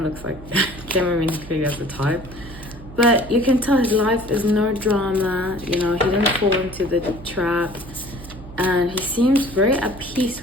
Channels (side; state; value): right; noise; hum, 16 dB below the sound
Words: of looks like Cameron clearly as the type. But you can tell his life is no drama, you know, he didn't fall into the trap. And he seems very at peace